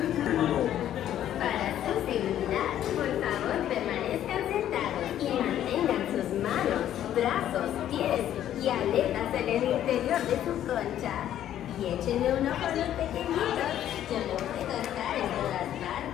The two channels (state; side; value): quieter; right; 11.4 dB